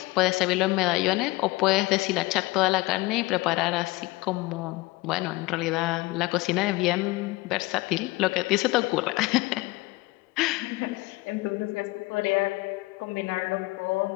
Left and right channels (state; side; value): quieter; right; 21.5 dB